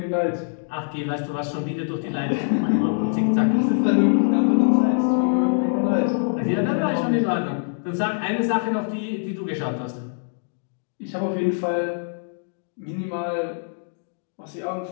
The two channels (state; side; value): silent; right; digital silence